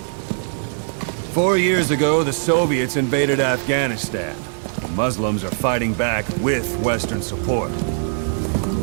4 years ago, the Soviets invaded Afghanistan. The Muslims are fighting back with Western support.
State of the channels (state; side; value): silent; left; 65 dB below the other